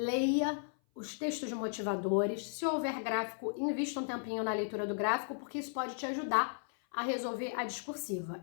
os textos motivadores. Se houver gráfico, invista um tempinho na leitura do gráfico, porque isso pode te ajudar a resolver a discursiva.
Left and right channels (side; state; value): right; silent; 54 dB below the other